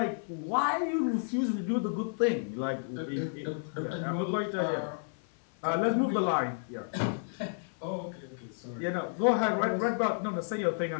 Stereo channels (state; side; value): silent; right; 57 dB below the other